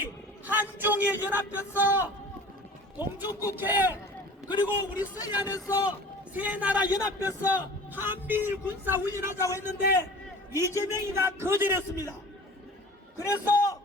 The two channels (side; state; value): both; normal; correlation 0.42